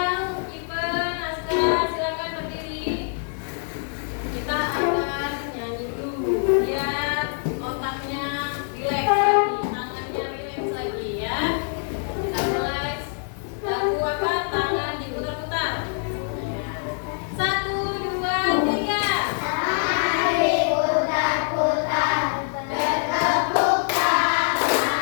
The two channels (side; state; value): right; silent; 62 dB below the other